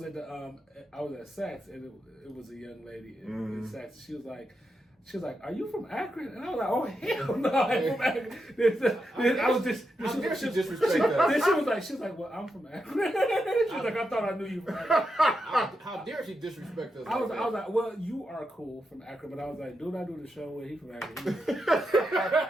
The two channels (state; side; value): normal; both; correlation 0.86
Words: and it was a young lady in Saks. She was like, "Are you from Akron?" And I was like, "Oh hell no, I'm from Akron." I was just disrespect us. Then she was like, "Well, I'm from Akron." She was like, "I thought I knew you from Akron." How dare she disrespect us? I was like, "Well, you are cool from Akron," but I was like, "Dude, I do the show where he from Akron."